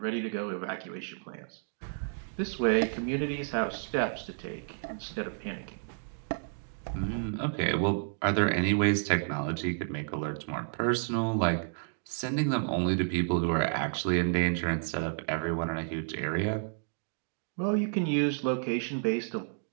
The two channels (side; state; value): left; silent; digital silence